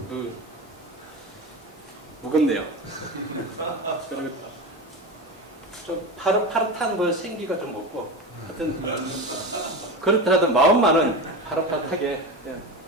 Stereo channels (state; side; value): normal; both; correlation 0.24